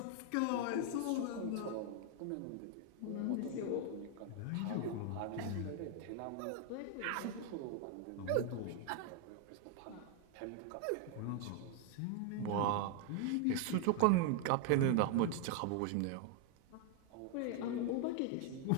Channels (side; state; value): both; different; correlation 0.00